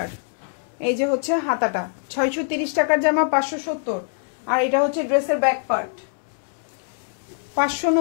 এই যে হচ্ছে হাতাটা। 630 টাকার জামা 570। আর এটা হচ্ছে ড্রেসের ব্যাক পার্ট।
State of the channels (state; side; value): silent; right; digital silence